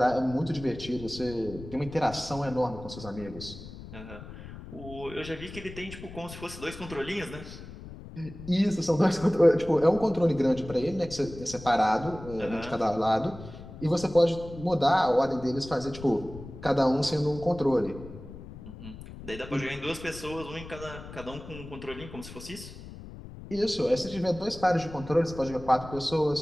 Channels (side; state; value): left; noise; rumble, 14 dB below the sound